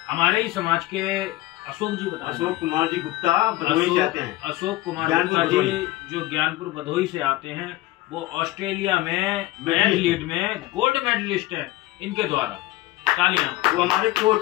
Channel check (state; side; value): quieter; right; 17.6 dB